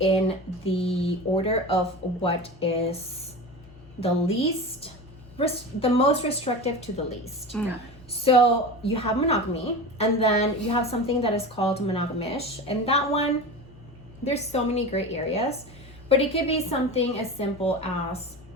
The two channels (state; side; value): noise; left; hum, 22 dB below the sound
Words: the order of what is the most restrictive to the least. Yeah. So you have monogamy, and then you have something that is called monogamish, and that one, there's so many gray areas, but it could be something as simple as